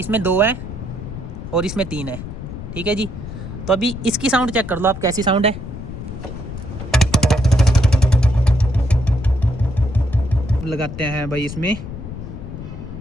2 है और इसमें 3 है। ठीक है जी। तो अभी इसकी साउंड चेक कर लो आप, कैसी साउंड है। लगाते हैं भाई इसमें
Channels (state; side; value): noise; left; rumble, 10 dB below the sound